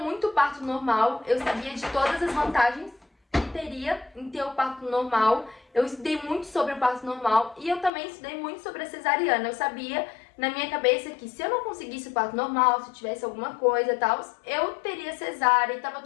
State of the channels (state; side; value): drops out; right; at 7.9 s